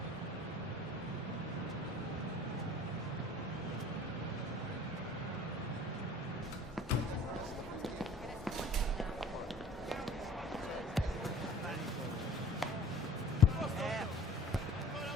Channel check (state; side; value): normal; both; correlation 0.47